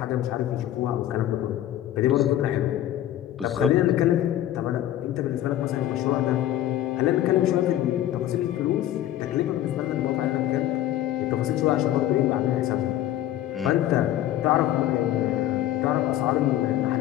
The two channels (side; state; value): right; quieter; 12.8 dB